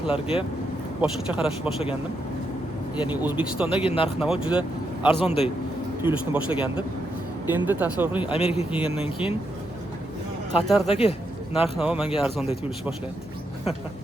boshqacha qarashni boshlagandim. Ya'ni O'zbekistondagi narx-navo juda arzonday tuyulishni boshlagandim. Endi tasavvur qiling, Amerikaga kelgandan keyin Qatardagi narx-navo menga arzonday tuyulishni boshlayapti.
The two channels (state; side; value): normal; both; correlation 0.81